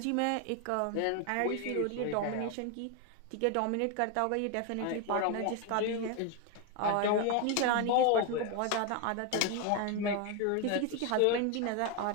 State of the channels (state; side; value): different; both; correlation 0.01